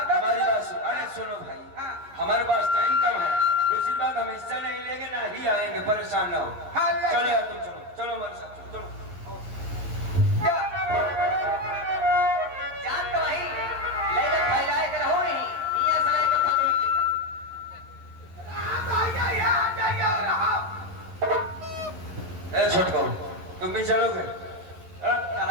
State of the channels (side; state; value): left; late; 11 ms